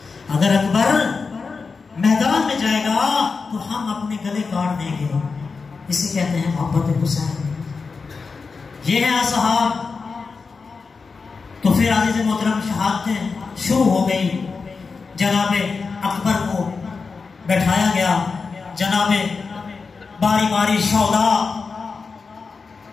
اگر اکبر میدان میں جائے گا تو ہم اپنے گلے کاٹ دیں گے۔ اسے کہتے ہیں محبت حسین۔ یہ ہے اصحاب۔ تو پھر عزیز محترم شہادتیں شروع ہو گئی، جناب اکبر کو بیٹھایا گیا، جناب باری باری شہداء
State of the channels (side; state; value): right; quieter; 4.7 dB